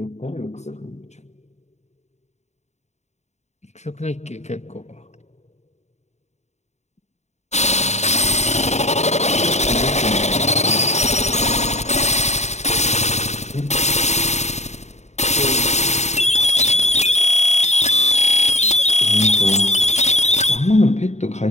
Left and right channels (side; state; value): right; late; 0.33 ms